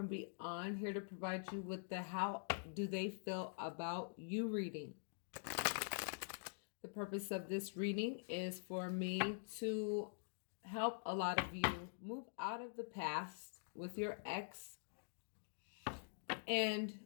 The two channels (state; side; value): silent; right; digital silence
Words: Beyond, here to provide you with the How Do They Feel About You reading. The purpose of this reading is for me to help a lot of you move out of the past with your ex and